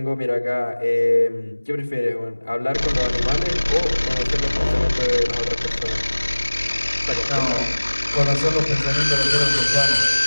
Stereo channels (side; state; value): both; inverted; correlation -1.00